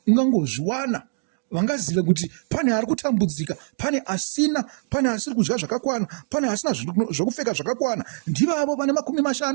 ungangozviwana. Vangazive kuti pane ari kutambudzika, pane asina, pane asiri kudya zvakakwana, pane asina zvokupfeka zvakakwana. Ndivavo vane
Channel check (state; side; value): silent; left; digital silence